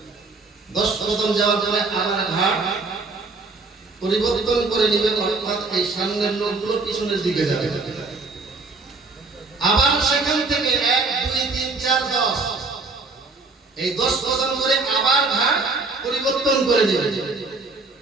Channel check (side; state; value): left; quieter; 3.8 dB